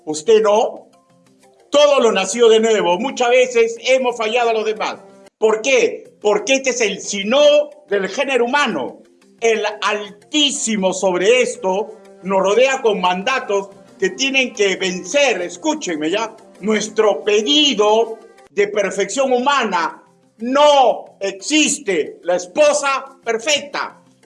¿usted no? Todo lo nació de nuevo. Muchas veces hemos fallado a los demás. ¿Por qué? Porque este es el sino del género humano. El Altísimo sobre esto nos rodea con mandatos que tienen que vencer, escúchenme ya, nuestro pedido de perfección humana. No existe la esposa perfecta,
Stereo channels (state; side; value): identical; both; correlation 1.00